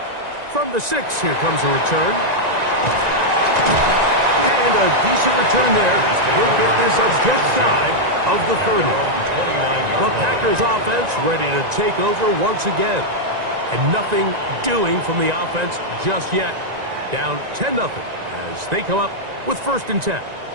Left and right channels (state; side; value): late; left; 1.9 ms